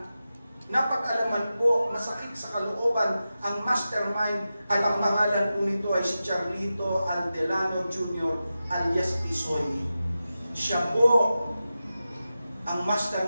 napag-alaman po, masakit sa kalooban, ang mastermind at ang pangalan po nito ay si Charlito Aldelano Jr. alias Tisoy. Siya po ang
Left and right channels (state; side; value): inverted; both; correlation -0.93